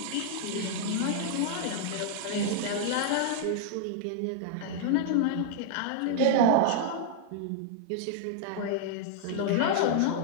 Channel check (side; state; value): both; different; correlation -0.01